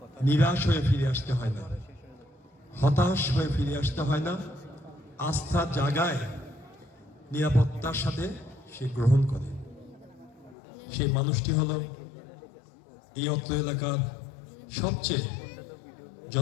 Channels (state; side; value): drops out; right; at 10.6 s